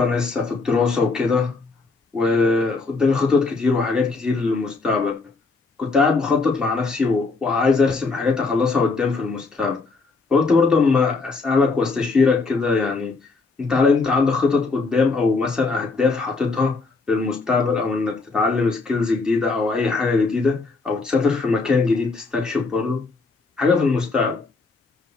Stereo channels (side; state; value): right; quieter; 4.0 dB